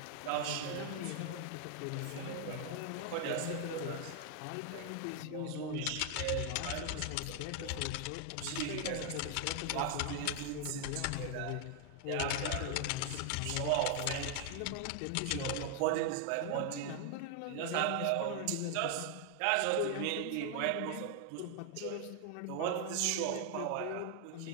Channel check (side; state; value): both; different; correlation 0.00